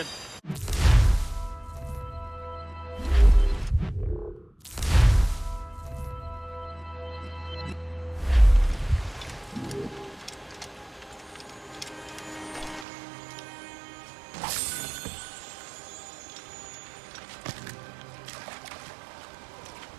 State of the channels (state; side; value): drops out; left; at 12.9 s